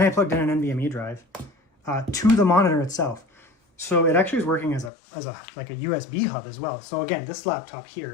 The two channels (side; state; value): right; drops out; at 4.9 s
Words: I plugged in an NVMe drive to the monitor itself. So it actually is working as a USB hub as well. So again, this laptop here